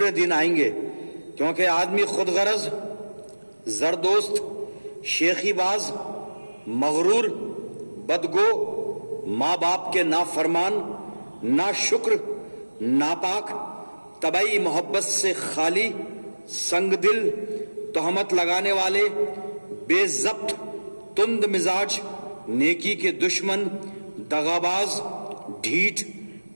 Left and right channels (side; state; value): both; inverted; correlation -1.00